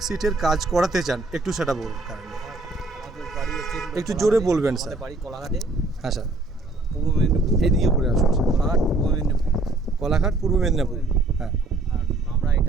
কাজ করাতে চান একটু সেটা বলুন। আমাদের বাড়ি হচ্ছে একটু জোরে বলবেন স্যার। আমাদের বাড়ি কোলাঘাটে, হ্যাঁ স্যার, পূর্ব মেদিনীপুর। এইদিকে করে আসুন স্যার। কোলাঘাট পূর্ব মেদিনীপুর। কোলাঘাট পূর্ব মেদিনীপুর। হ্যাঁ, আর আমরা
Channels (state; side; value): quieter; left; 3.0 dB